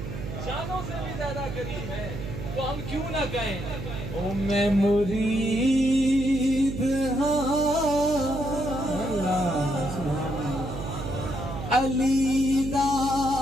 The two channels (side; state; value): right; noise; hum, 7 dB below the sound